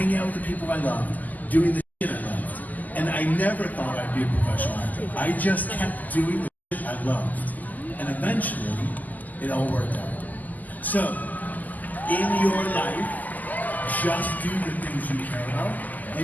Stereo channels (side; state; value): right; late; 0.082 ms